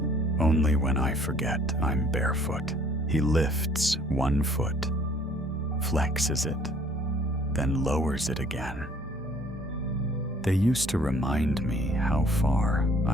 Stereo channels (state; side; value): normal; both; correlation 0.56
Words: Only when I forget I'm barefoot. He lifts one foot, flexes it, then lowers it again. They used to remind me how far